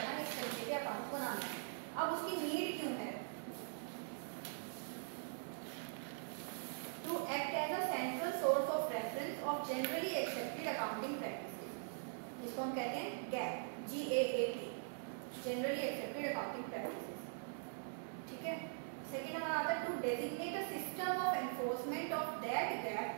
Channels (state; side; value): silent; left; digital silence